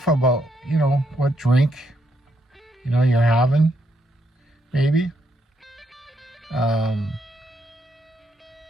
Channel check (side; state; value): both; normal; correlation 0.76